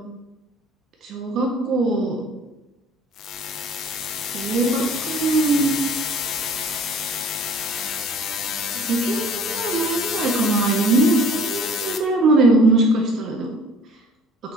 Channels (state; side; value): normal; both; correlation 0.51